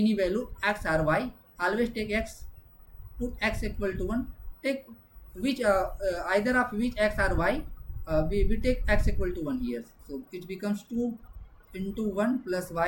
value x or y. Always take x. Put x equal to 1. Take which either of which x or y. We take x equal to 1 here. So it becomes 2 into 1 plus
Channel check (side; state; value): both; identical; correlation 1.00